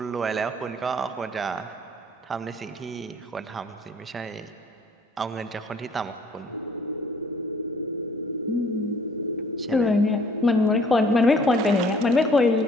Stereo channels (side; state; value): both; normal; correlation 0.57